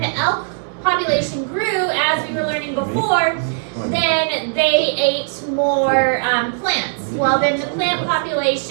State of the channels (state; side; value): silent; left; digital silence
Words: the elk population grew, as we were learning before, then they ate more plants. Well, then the plant